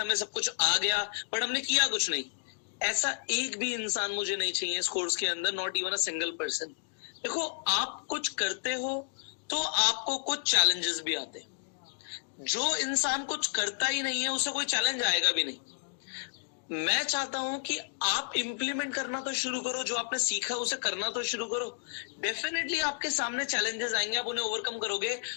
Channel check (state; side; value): silent; right; digital silence